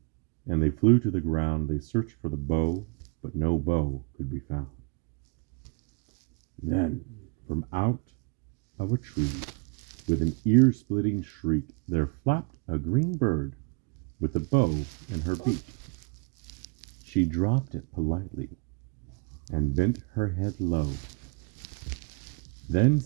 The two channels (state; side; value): quieter; left; 30.5 dB